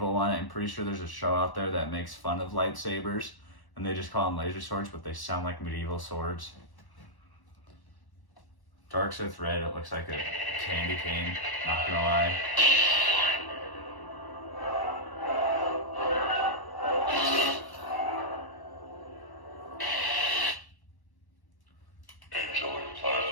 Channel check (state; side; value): late; right; 1.1 ms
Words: one. I'm pretty sure there's a show out there that makes fun of lightsabers, and they just call them laser swords, but they sound like medieval swords. Dark Sith Red, it looks like a candy cane, not gonna lie.